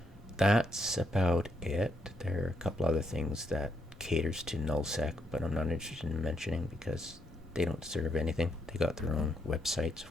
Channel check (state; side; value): normal; both; correlation 0.77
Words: that's about it. There are a couple other things that caters to nullsec, but I'm not interested in mentioning because they don't serve anything. They got their own websites,